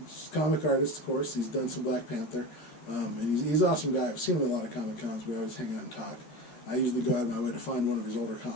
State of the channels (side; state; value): right; late; 13 ms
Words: comic artist, of course. He's done some Black Panther. And he's an awesome guy. I've seen him at a lot of Comic Cons. We always hang out and talk. I usually go out of my way to find one of his older